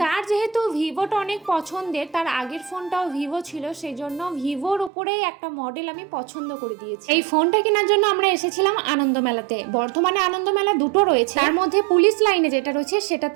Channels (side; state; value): left; drops out; at 4.9 s